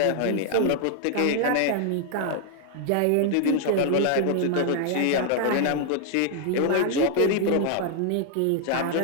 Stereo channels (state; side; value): different; both; correlation 0.00